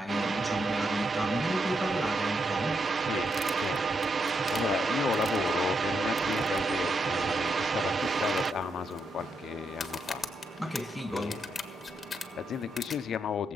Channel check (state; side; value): normal; both; correlation 0.81